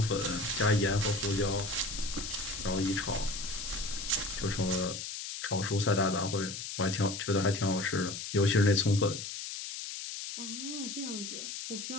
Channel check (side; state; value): left; noise; hiss, 7 dB below the sound